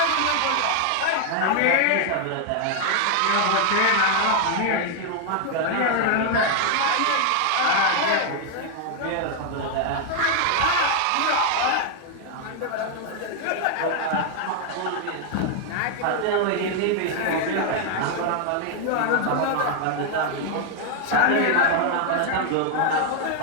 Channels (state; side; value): different; both; correlation 0.00